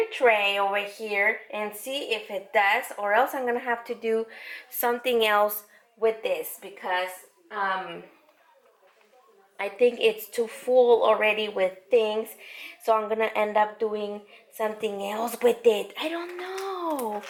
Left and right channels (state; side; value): identical; both; correlation 1.00